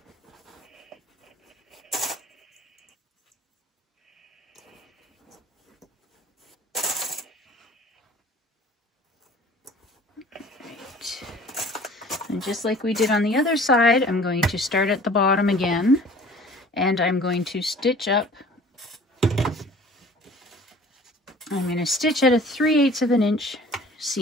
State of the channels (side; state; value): both; normal; correlation 0.48